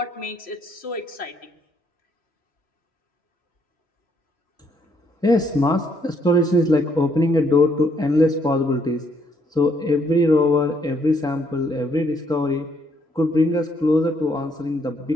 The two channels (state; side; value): normal; both; correlation 0.70